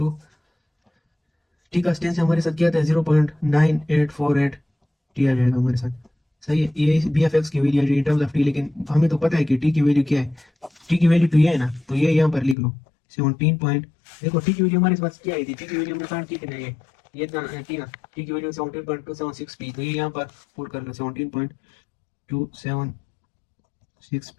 T का स्टेंस हमारे साथ क्या था, 0.9848 टी आ जाएगा हमारे साथ। सही है, ये बी एफ एक्स की वैल्यू है इन टर्म्स ऑफ टी, लेकिन हमें तो पता है कि टी की वैल्यू क्या है, टी की वैल्यू तो ये है ना, तो ये यहाँ पर लिख लो 17 पॉइंट। देखो टी की वैल्यू हमारे पास क्या आई थी, टी की वैल्यू हमने फाइंड की थी ना, ये टी ना, टी की वैल्यू 17.276 पी, तो ये यहाँ पर पुट कर लो 17.276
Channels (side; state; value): right; drops out; at 12.6 s